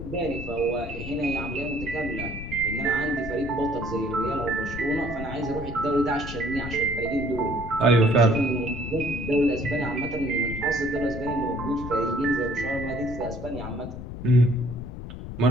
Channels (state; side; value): noise; left; rumble, 9 dB below the sound